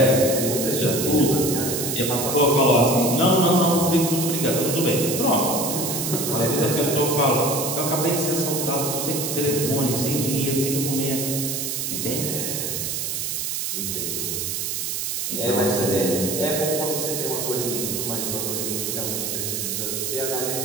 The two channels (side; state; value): right; noise; hiss, 2 dB below the sound